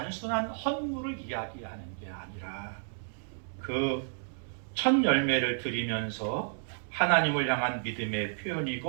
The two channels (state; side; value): silent; left; digital silence